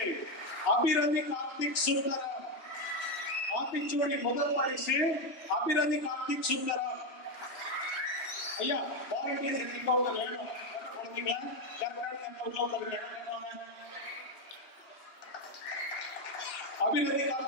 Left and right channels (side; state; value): right; late; 3.1 ms